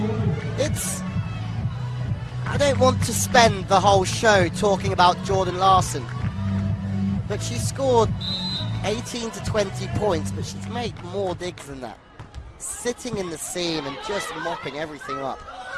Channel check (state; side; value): identical; both; correlation 1.00